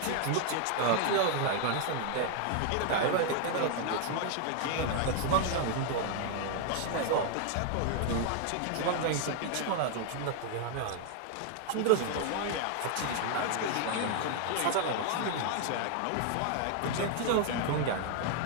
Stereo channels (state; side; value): different; both; correlation 0.00